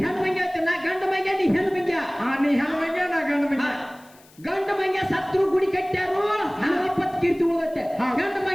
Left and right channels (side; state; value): left; noise; hiss, 27 dB below the sound